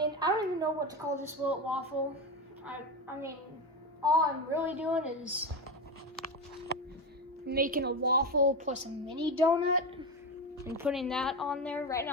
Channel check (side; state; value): both; normal; correlation 0.17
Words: I don't even know what to call this Will It Waffle. I mean, all I'm really doing is making a waffle plus a mini donut and putting that on there. Right